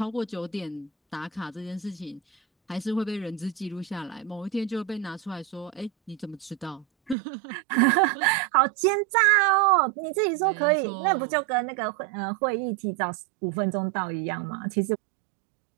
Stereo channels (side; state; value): left; drops out; at 7.2 s